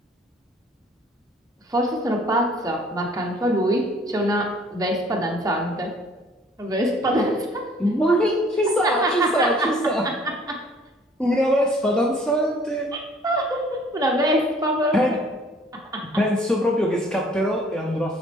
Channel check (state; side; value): normal; both; correlation 0.56